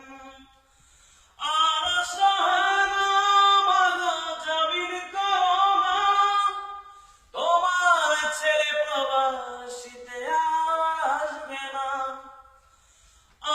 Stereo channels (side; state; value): both; identical; correlation 1.00